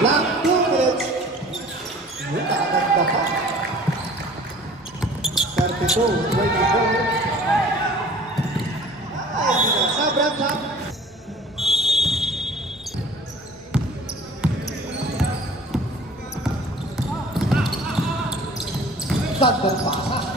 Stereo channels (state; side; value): normal; both; correlation 0.48